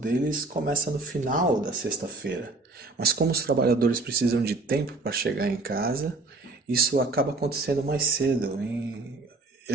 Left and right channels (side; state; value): left; quieter; 3.4 dB